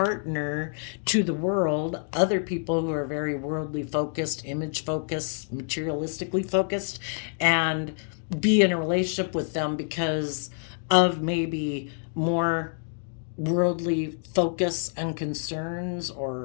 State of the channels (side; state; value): right; silent; 59 dB below the other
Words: to the world, other people who are very worldly focused, image focused, materialistically focused, and be in a relationship with them because of maybe more worldly focus and concerns,